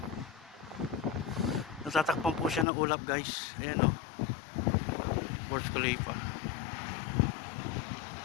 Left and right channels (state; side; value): drops out; right; at 2.7 s